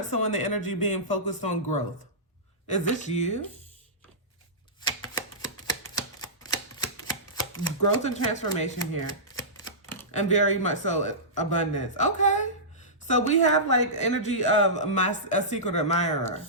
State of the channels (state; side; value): normal; both; correlation -0.18